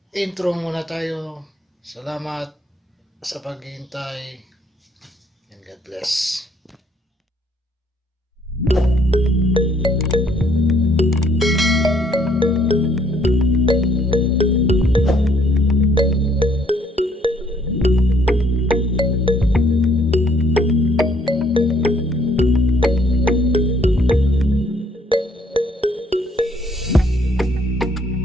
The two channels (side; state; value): both; normal; correlation 0.65